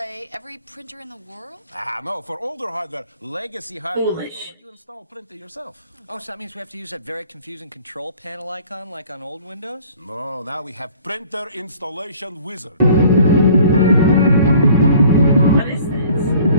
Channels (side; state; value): both; inverted; correlation -0.52